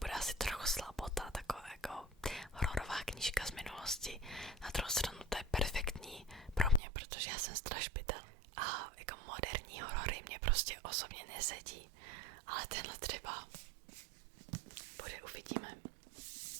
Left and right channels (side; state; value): left; drops out; at 6.8 s